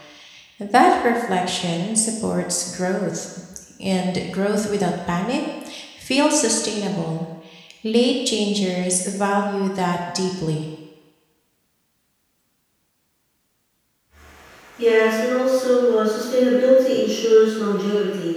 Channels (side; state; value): both; identical; correlation 1.00